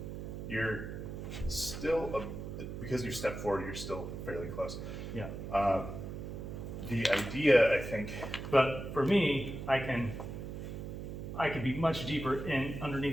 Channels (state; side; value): noise; right; hum, 7 dB below the sound